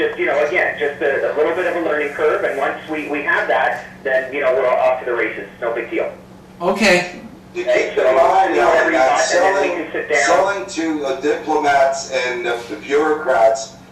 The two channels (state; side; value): identical; both; correlation 1.00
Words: you know, again, just a little bit of a learning curve, and once we have that, then, you know, we're off to the races. No big deal. Okay. You keep in mind that selling to diplomats and bureaucrats